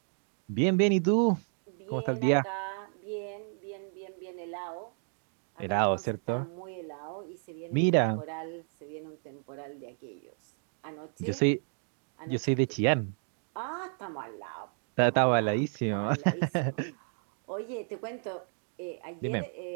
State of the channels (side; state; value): left; silent; 56 dB below the other